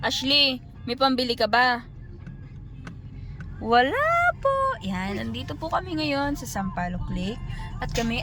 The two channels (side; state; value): both; identical; correlation 1.00